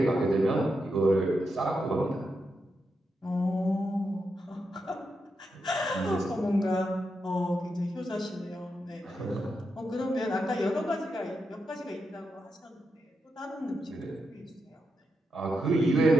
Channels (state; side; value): normal; both; correlation 0.85